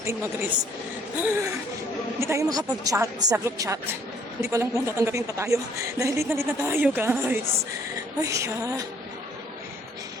mag-risk. Hindi tayo makapag-chat sa group chat. Hindi ko alam kung tatanggapin pa tayo. Dahil late na tayo, guys. Ay,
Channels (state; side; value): normal; both; correlation 0.61